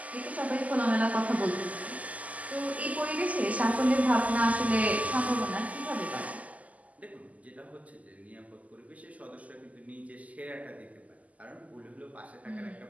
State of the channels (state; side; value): late; left; 0.073 ms